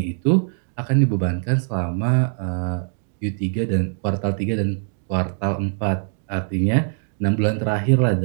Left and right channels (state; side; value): silent; left; digital silence